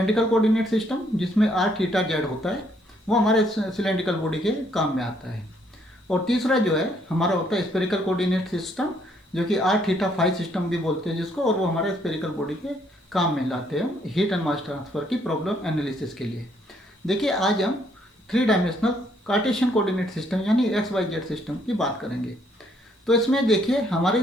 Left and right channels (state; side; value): normal; both; correlation 0.69